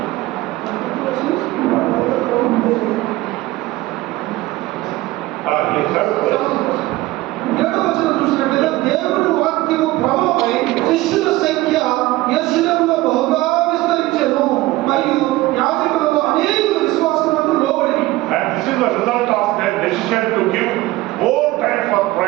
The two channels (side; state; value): left; quieter; 18.5 dB